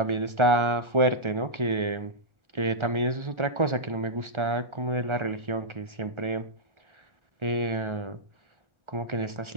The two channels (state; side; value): late; left; 1.4 ms